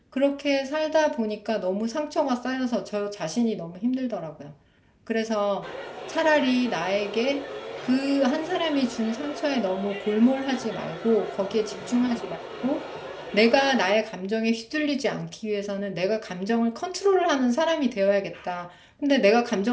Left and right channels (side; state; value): both; identical; correlation 1.00